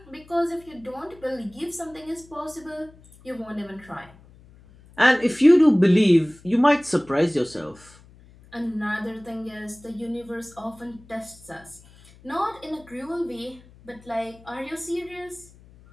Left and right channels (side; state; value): left; noise; hum, 25 dB below the sound